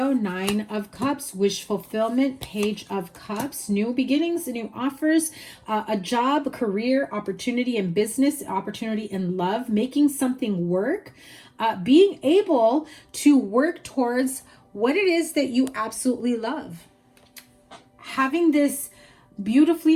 9 of Cups, wish fulfillment, Page of Cups, new beginnings, new offers, a job, a career, opportunity in business, opportunity in love, making something work, being able to work towards what it is that you absolutely love. Having this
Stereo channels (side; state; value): both; identical; correlation 1.00